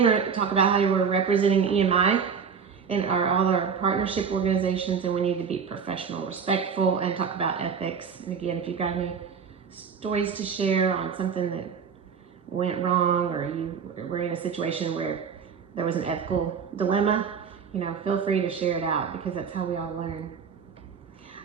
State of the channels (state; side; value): quieter; left; 6.5 dB